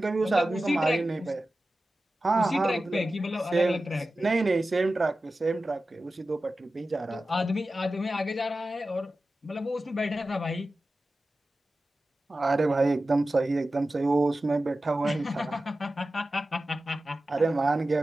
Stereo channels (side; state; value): both; normal; correlation 0.94